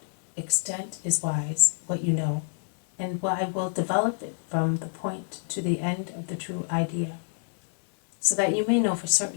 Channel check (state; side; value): silent; right; digital silence